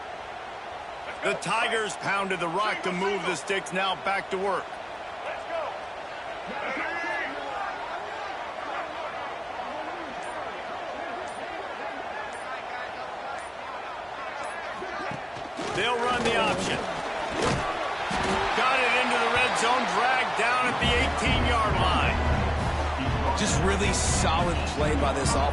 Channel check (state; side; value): identical; both; correlation 1.00